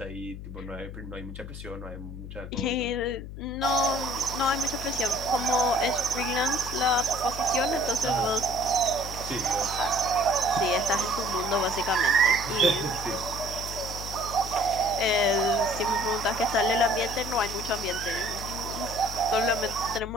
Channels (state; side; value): noise; left; hum, 10 dB below the sound